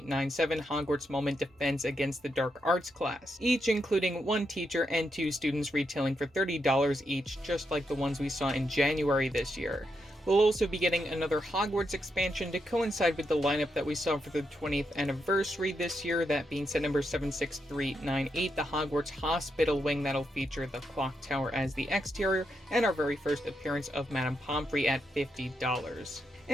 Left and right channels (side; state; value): both; normal; correlation 0.82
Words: Hogwarts Moment Defense Against the Dark Arts class, each including 1 teacher and 2 students retailing for $30 each, just like the ones we saw in January this year. We'll also be getting another Hogwarts expansion to coincide with the lineup that we saw for the 20th anniversary this year, that being set number 76398, the Hogwarts Hospital Wing that'll feature the clock tower as the exterior, and our very first appearance of Madame Pomfrey at $50.